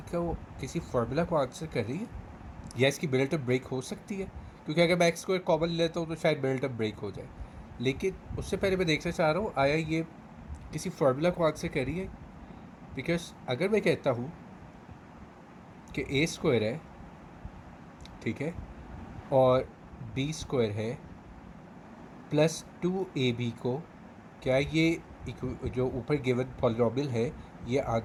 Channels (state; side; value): identical; both; correlation 1.00